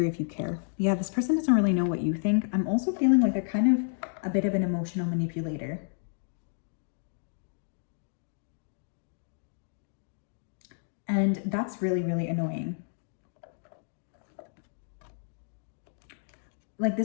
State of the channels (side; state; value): right; silent; digital silence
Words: if you care. Yeah, this person doesn't really know what you think. I'm also feeling like they're kind of a bit of an emotional manipulator. And that's really, really annoying. Like